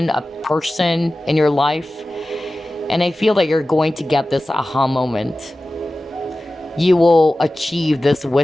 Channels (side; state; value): both; normal; correlation 0.96